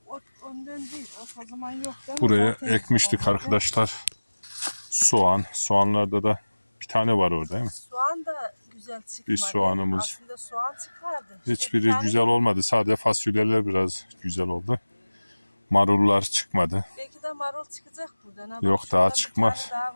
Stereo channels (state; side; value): inverted; both; correlation -1.00